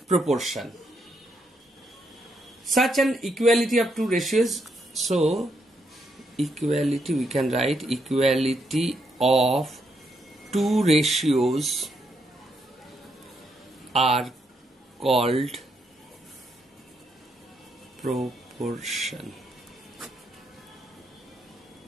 proportion. Such an equality of two ratios, so equality, we can write equality of two ratios are called proportion.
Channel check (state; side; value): normal; both; correlation 0.78